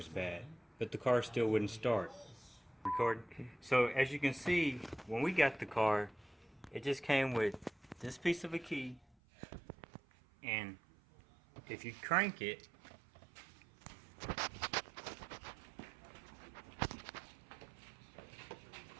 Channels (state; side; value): drops out; left; at 9.2 s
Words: bad, but the car still wouldn't start. Record. So as you can see, when we got the car, it just came with this piece of a key, and if you crank it,